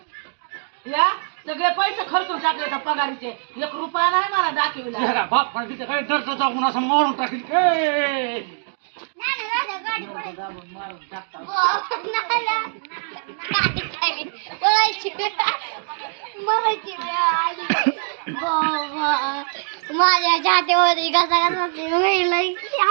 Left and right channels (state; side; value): silent; left; digital silence